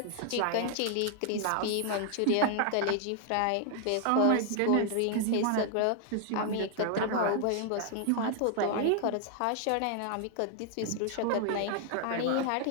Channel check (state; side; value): different; both; correlation 0.00